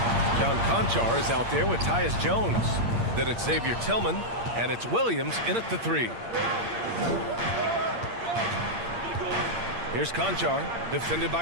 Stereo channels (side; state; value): left; late; 8.7 ms